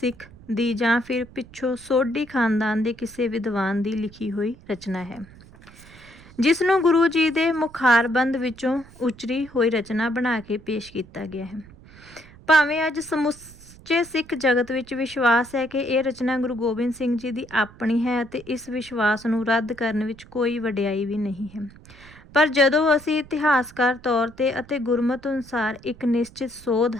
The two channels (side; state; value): right; noise; rumble, 22 dB below the sound